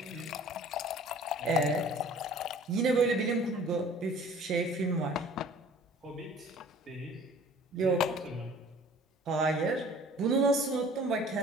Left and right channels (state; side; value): normal; both; correlation 0.49